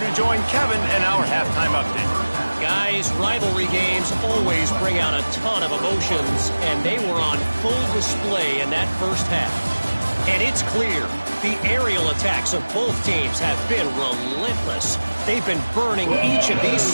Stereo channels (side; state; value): both; inverted; correlation -1.00